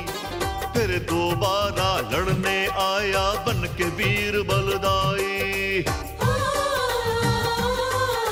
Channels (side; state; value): both; identical; correlation 1.00